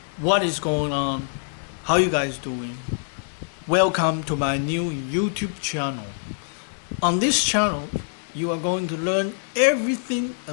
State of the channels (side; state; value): right; silent; digital silence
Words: What is going on? How you guys doing? Welcome to my new YouTube channel. On this channel, you are going to learn everything